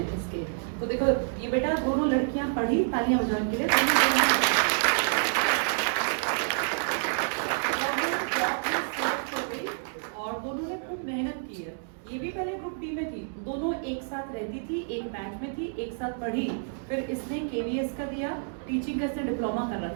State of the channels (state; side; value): silent; left; digital silence